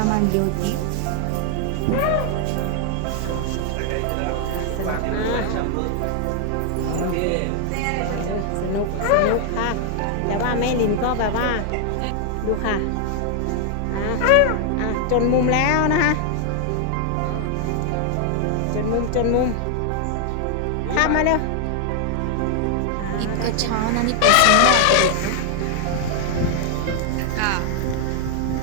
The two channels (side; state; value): both; different; correlation 0.00